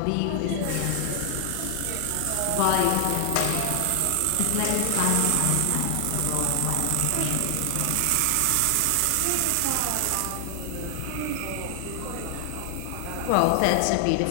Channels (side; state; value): both; different; correlation 0.00